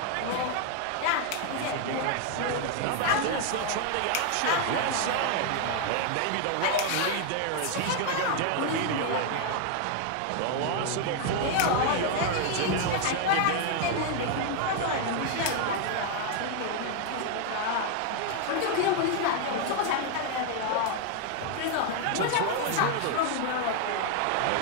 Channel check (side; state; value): both; different; correlation 0.01